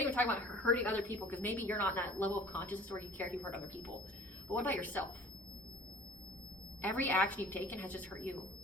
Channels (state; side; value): normal; both; correlation 0.48